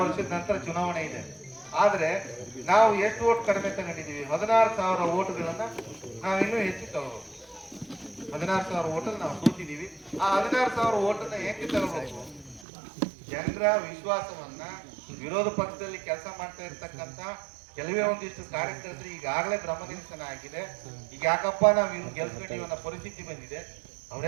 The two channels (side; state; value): left; drops out; at 12.7 s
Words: ವರ್ಷದ ನಂತರ ಚುನಾವಣೆ ಇದೆ. ಆದ್ರೆ ನಾವು ಎಷ್ಟು ಓಟ್ ಕಡಿಮೆ ತಗೊಂಡಿದ್ದೀವಿ? 16,000 ಓಟ್ಗಳನ್ನ ನಾವು ಇನ್ನೂ ಹೆಚ್ಚು ತಗೋಬೇಕು. 16,000 ಓಟಲ್ಲಿ ನಾವು ಸೋತಿದ್ದೀವಿ. ಆ 16,000 ಓಟನ್ನ ಏಕೆ ತಗೋಬೇಕು? ಜನರ ವಿಶ್ವಾಸವನ್ನ, ವಿರೋಧ ಪಕ್ಷದಲ್ಲಿ ಕೆಲಸ ಮಾಡ್ತಾ ಇರ್ತಕ್ಕಂಥ ಕೆಲವೇ ಒಂದಿಷ್ಟು ಕಾರ್ಯಕರ್ತರು ಈಗಾಗಲೇ ಭ್ರಮನಿರಸನ ಆಗಿದೆ. ಈಗ ಯಾಕಪ್ಪ ನಾವು ಇನ್ನು ಗೆಲ್ಸ್ಕೊಂಡಿವಿ ಅನ್ನೋ ಪರಿಸ್ಥಿತಿ ಬಂದಿದೆ.